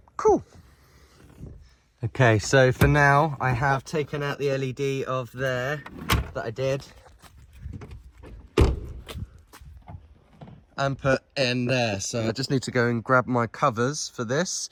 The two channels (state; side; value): identical; both; correlation 1.00